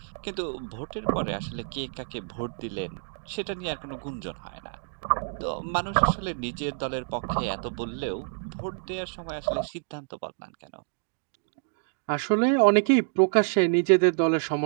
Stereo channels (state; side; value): silent; left; digital silence